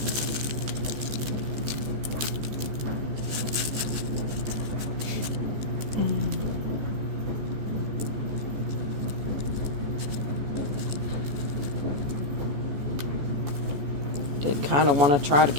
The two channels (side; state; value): left; late; 14 ms